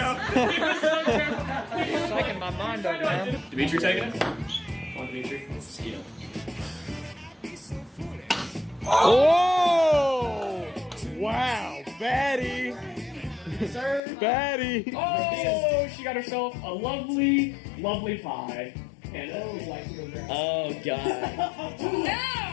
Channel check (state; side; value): drops out; right; at 14.0 s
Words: Shaking my mind up, man. Dimitri taking it? Come on, Dimitri. Steal. Oh! Wow, Batty! Sir. Batty! Oh, she got herself a lovely, lovely pie. And Oh, God. No!